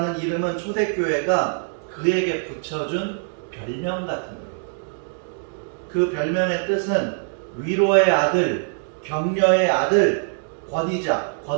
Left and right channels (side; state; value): left; silent; 63 dB below the other